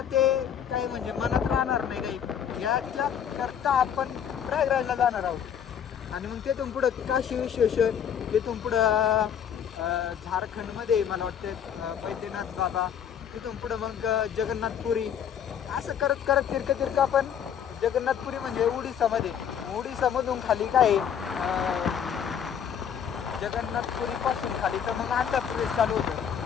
ते काही म्हणजे मनात राहणार नाही काही, याच्या करता आपण प्रयागराजला जाणार आहोत. आणि मग तिथून पुढं काशी विश्वेश्वर, तिथून पुढं झारखंडमध्ये मला वाटतं बैद्यनाथ बाबा, तिथून पुढं मग जगन्नाथपुरी, असं करत करत तिरकं आपण जगन्नाथपुरी म्हणजे उडीसामध्ये, उडीसामधून खाली काय जगन्नाथपुरीपासून खाली तर मग आंध्र प्रदेश चालू होतं.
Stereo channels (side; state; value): right; quieter; 8.5 dB